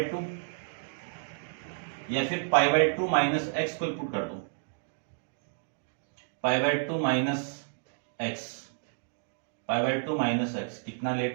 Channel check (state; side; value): silent; left; digital silence